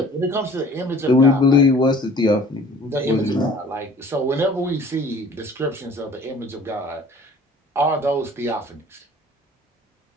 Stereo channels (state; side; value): normal; both; correlation 0.49